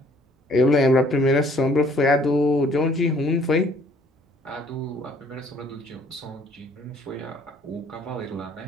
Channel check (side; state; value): both; normal; correlation 0.59